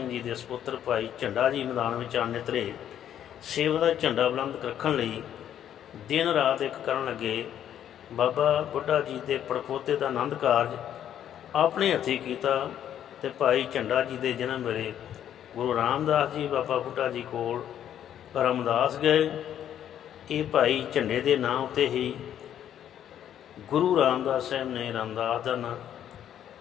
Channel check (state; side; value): quieter; right; 10.3 dB